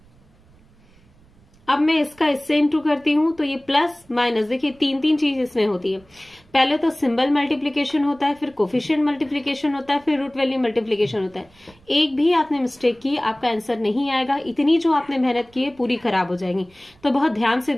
अब मैं इसका इससे इंटू करती हूँ तो ये प्लस माइनस, देखिए 3 चीज इसमें होती है। पहले तो सिंबल मल्टीप्लीकेशन होता है, फिर कोफिशिएंट मल्टीप्लीकेशन होता है, फिर रूट वैल्यू मल्टीप्लीकेशन होता है। एक भी आपने मिस्टेक की आपका आंसर नहीं आएगा, इतनी जो आपने मेहनत की है पूरी खराब हो जाएगी। तो बहुत ध्यान से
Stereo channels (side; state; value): right; noise; rumble, 29 dB below the sound